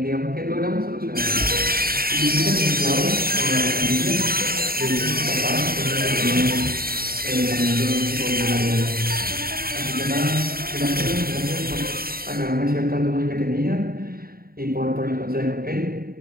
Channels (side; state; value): left; late; 0.43 ms